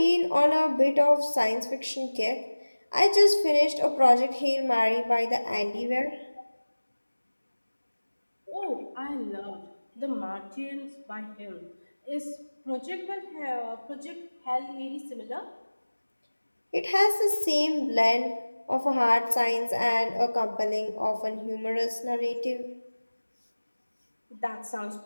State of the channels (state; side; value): inverted; both; correlation -1.00